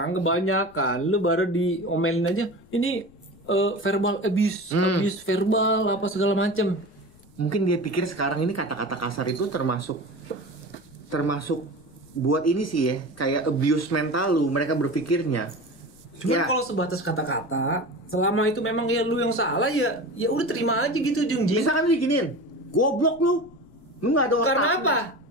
kebanyakan lu baru diomelin aja. Ini verbal abuse verbal apa segala macem. Mungkin dia pikir sekarang ini kata-kata kasar itu termasuk buat ini sih ya, kayak abuse mental lu, mereka berpikirnya. Cuman kalau sebatas kata-kata, selama itu memang ya lu yang salah ya udah terima aja gitu Jungji. Misalkan lu diginiin, goblok lu nggak ada otak. Karena apa?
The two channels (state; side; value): noise; left; rumble, 27 dB below the sound